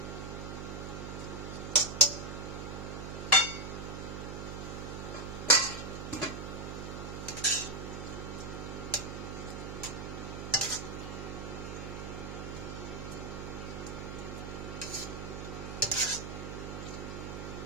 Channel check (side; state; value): right; noise; hum, 6 dB below the sound